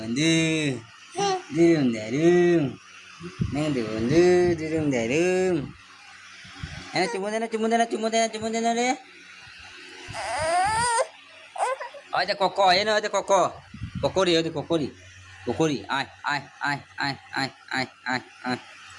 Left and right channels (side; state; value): both; identical; correlation 1.00